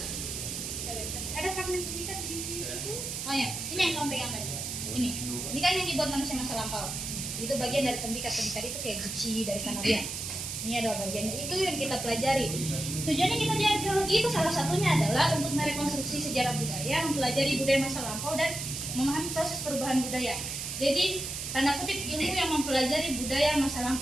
Ada fragmen tembikar di situ. Oh ya, ini yang kamu pegang tadi. Ini kan yang dibuat manusia masa lampau. Itu bagian dari tembikar itu kayak guci dari Kanarian. Ini adalah bagiannya, itu yang kita pelajari. Tujuannya kita di arkeologi itu salah satunya adalah untuk merekonstruksi sejarah budaya, mempelajari budaya masa lampau dan memahami proses perubahan budaya. Jadi tanda kutip ilmu yang mempelajari budaya masa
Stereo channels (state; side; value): noise; right; hiss, 5 dB below the sound